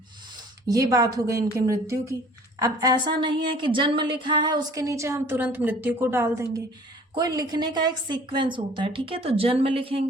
ये बात हो गई इनकी मृत्यु की। अब ऐसा नहीं है कि जन्म लिखा है उसके नीचे हम तुरंत मृत्यु को डाल देंगे, कोई लिखने का एक सीक्वेंस होता है। ठीक है, तो जन्म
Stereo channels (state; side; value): normal; both; correlation 0.51